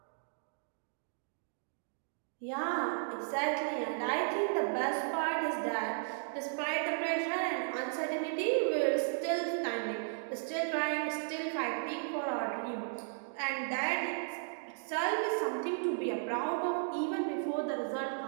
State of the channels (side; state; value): left; silent; digital silence